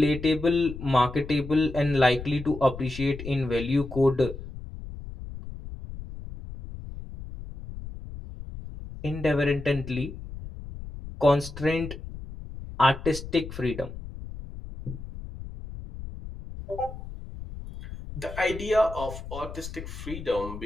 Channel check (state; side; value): noise; left; rumble, 11 dB below the sound